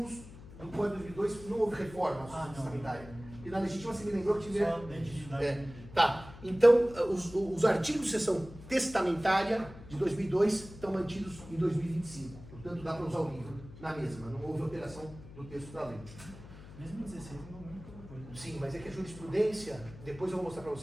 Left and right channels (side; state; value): left; noise; hum, 17 dB below the sound